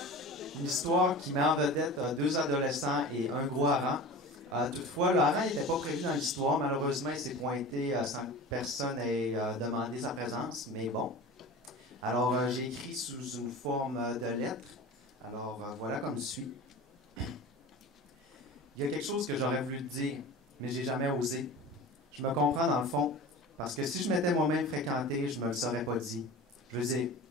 une histoire qui met en vedette deux adolescents et un gros hareng. Toutefois, le hareng n'était pas prévu dans l'histoire. Malheureusement, il s'est pointé sans que personne ait demandé sa présence, mais bon. Alors, j'ai écrit sous une forme de lettre. Alors, voilà comme suit. Il y a quelque chose que j'aurais voulu te dire, mais j'ai jamais osé. Je me comprends dans le fond, parce que si je m'étais moi-même fréquenté, je me le serais pas dit. Je veux dire,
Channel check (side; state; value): both; normal; correlation 0.35